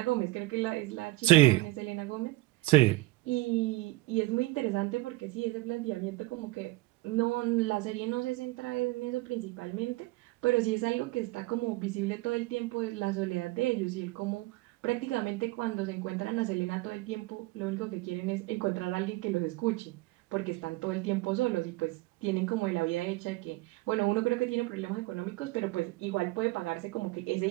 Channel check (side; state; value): left; quieter; 20.6 dB